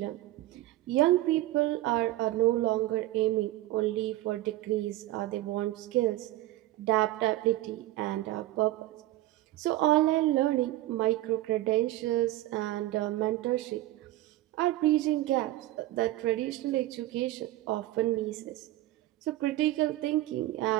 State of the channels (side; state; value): left; quieter; 16.2 dB